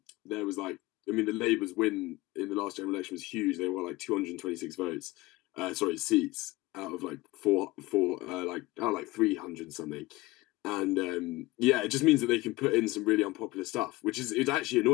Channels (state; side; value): quieter; right; 20.3 dB